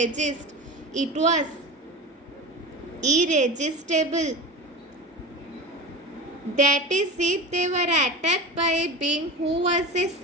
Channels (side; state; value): both; normal; correlation 0.29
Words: It was irresistible. That is, if they were attacked by a being who was a